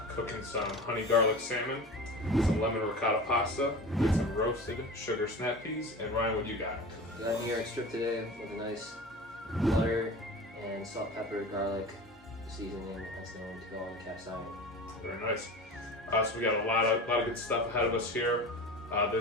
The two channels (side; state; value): both; normal; correlation 0.33